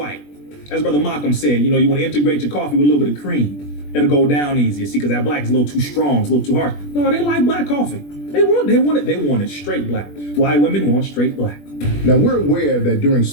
As Brother Malcolm said, you want to integrate your coffee with a little bit of cream. It'll go down easier. See, because that black is a little too strong, it's a little too harsh. No, they like black coffee. They want it straight black. White women want straight black. Now, we're aware that during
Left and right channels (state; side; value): late; right; 21 ms